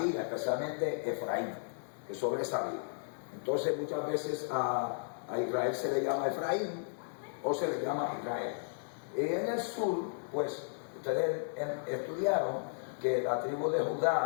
especialmente Efraín, que sobresalía. Entonces muchas veces a Israel se le llama Efraín o se le llama Israel. Y en el sur, pues ustedes estudiaron que la tribu de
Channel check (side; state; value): right; silent; 55 dB below the other